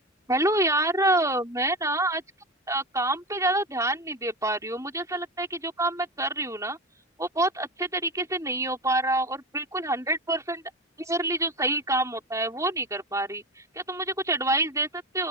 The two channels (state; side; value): normal; both; correlation 0.24